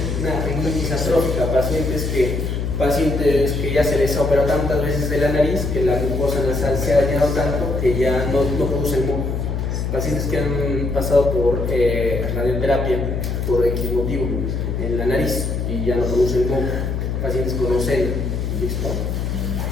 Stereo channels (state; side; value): noise; left; hum, 1 dB below the sound